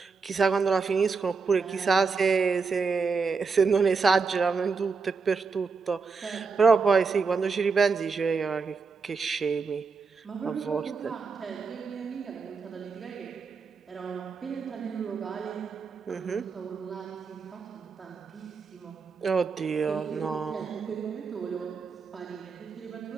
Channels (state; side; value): quieter; left; 5.0 dB